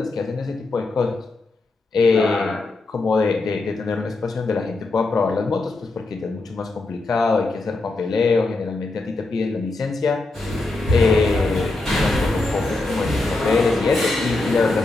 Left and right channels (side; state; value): right; quieter; 3.2 dB